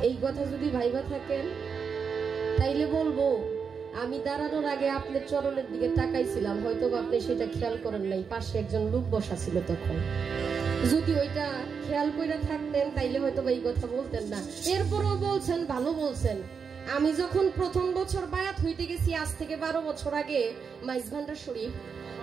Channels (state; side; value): quieter; left; 6.1 dB